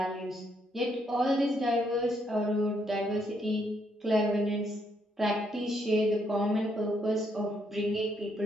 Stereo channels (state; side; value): normal; both; correlation 0.74